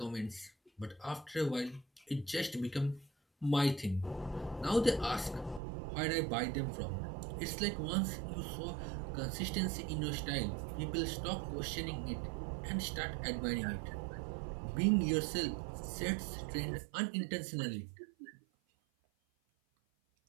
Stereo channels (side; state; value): left; drops out; at 5.6 s